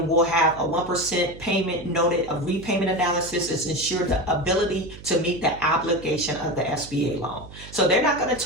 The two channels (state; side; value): noise; right; hum, 17 dB below the sound